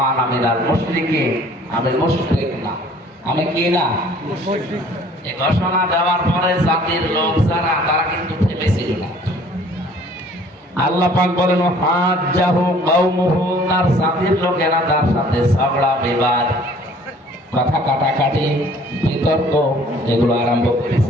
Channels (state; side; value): normal; both; correlation 0.54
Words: আমিনাল মুশরিকিন, আমি মুশরিক না, আমি কি না, এই ঘোষণা দেওয়ার পরে জাতির লোক যারা তারা কিন্তু থেমেছিল না। আল্লাহ পাক বলেন হাজ্জাহু কওমুহু, তার জাতির লোকেরা তার সাথে ঝগড়া বিবাদ, কথা কাটাকাটি, বিতর্ক এগুলো আরম্ভ